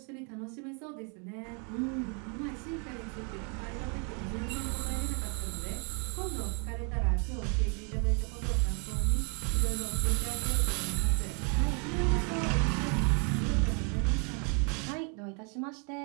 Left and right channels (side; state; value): left; quieter; 37.2 dB